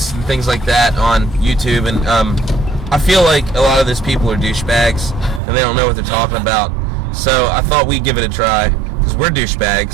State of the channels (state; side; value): drops out; left; at 5.4 s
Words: and things like that on YouTube, and I feel like a lot of these people are douchebags, and they don't know what they're talking about. So I thought we'd give it a try, because we're